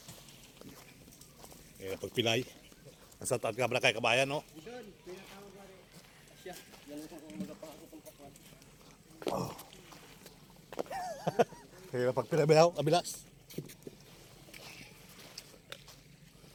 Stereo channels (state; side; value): identical; both; correlation 1.00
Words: Eh, pagpilay. Nasa taat ka ba kay kabayan, no? Oh. Kaya pagpilay ba abilas?